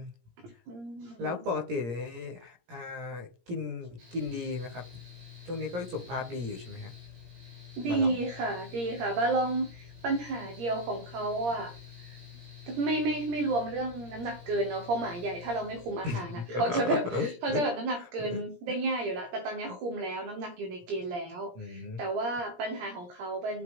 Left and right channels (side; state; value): left; late; 17 ms